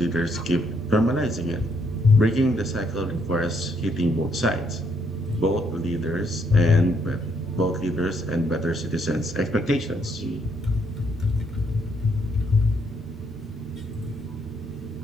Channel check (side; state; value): both; normal; correlation 0.72